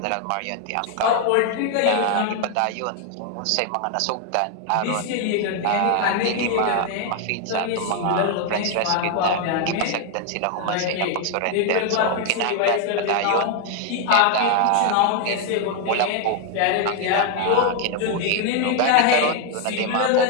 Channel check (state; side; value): different; both; correlation 0.01